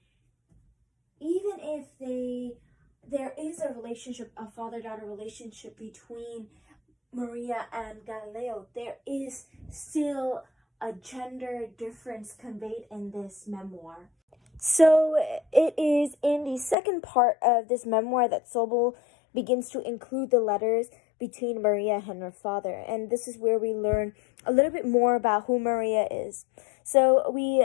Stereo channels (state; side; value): drops out; right; at 16.8 s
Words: even if there is a relationship, a father-daughter relationship between Maria and Galileo, there is still a gender difference conveyed in this memoir. So it is in the second part of this memoir that Sobel begins to include the letters between Maria and her father, and this is where we learn a little bit more about who Maria is. So